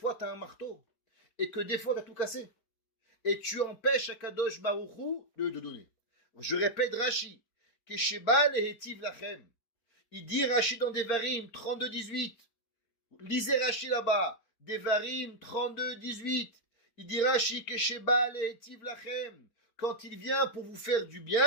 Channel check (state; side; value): late; right; 4.4 ms